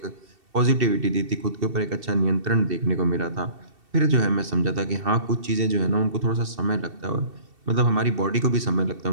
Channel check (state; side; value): late; left; 2.7 ms